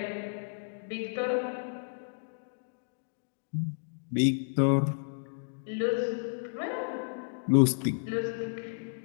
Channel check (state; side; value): silent; right; digital silence